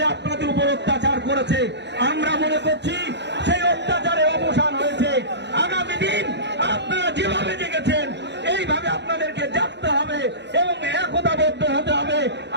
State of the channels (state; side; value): late; left; 0.51 ms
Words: আপনাদের উপর অত্যাচার করেছে। আমরা মনে করছি সেই অত্যাচারের অবসান হয়েছে। আগামী দিন আপনারা যেভাবে জেগেছেন এইভাবে আপনাদেরকে জাগতে হবে এবং একতাবদ্ধ হতে হবে।